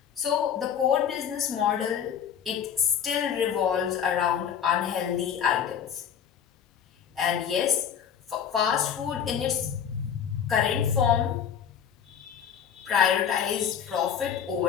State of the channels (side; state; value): right; quieter; 8.3 dB